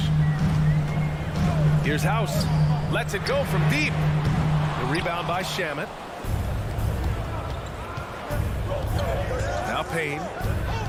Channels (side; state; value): both; identical; correlation 1.00